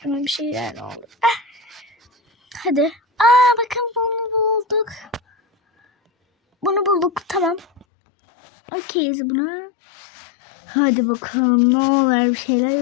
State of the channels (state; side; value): drops out; right; at 7.9 s